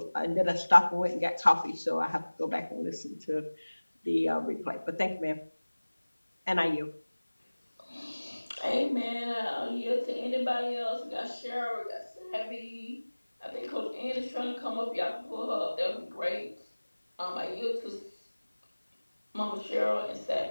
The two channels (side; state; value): both; inverted; correlation -1.00